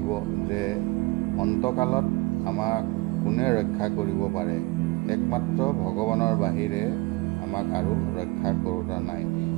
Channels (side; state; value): left; quieter; 23.8 dB